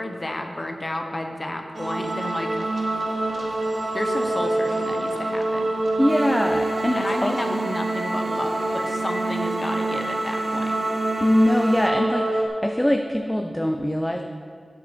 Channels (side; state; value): both; normal; correlation 0.96